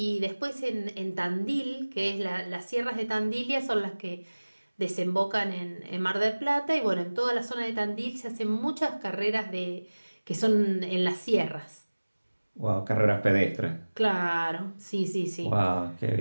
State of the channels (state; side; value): inverted; both; correlation -1.00